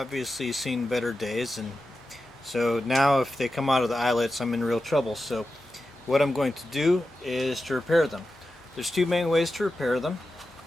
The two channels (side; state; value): both; normal; correlation 0.92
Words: seen better days, and so now if they come out of the eyelets, I'm in real trouble. So what I'm going to do is to repair them. There's two main ways to repair them.